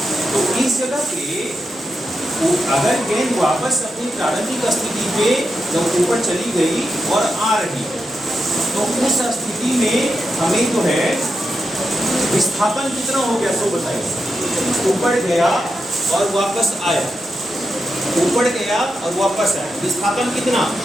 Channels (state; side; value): normal; both; correlation 0.87